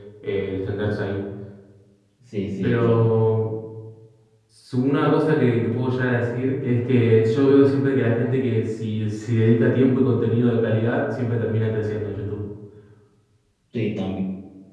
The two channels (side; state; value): both; identical; correlation 1.00